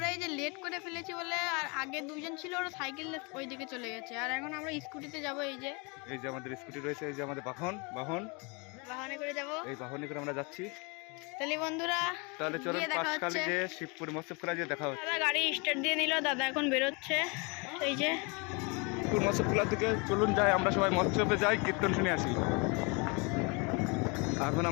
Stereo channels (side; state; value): right; quieter; 30.5 dB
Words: এই যে লেট করে ফেলেছি বলে, আর আগে দুজন ছিল, ওরা সাইকেল ওই দিকে চলে গেছে, আর এখন আমরা স্কুটিতে যাব। এই যে আমাদের স্কুটি রয়েছে, এই যে আমাদের বাহনে করে যাব। এই বাহনে করে আমরা যাচ্ছি। তাহলে বন্ধুরা, তাহলে চলুন পাঁচখালি যে শিবপুর মৎস্য খোলা যে দেখা হচ্ছে। দাদা গাড়ি স্টার্ট দিয়ে নিল, দাদা এখন বেরোচ্ছে। এই যে শিবপুর মৎস্য খোলা থেকে চলুন যাই, আমরা সবাই মৎস্যবে যাই, কীর্তন শুনে আসি। এখন